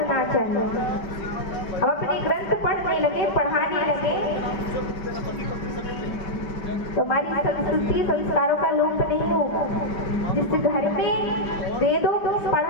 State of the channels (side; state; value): right; late; 5.1 ms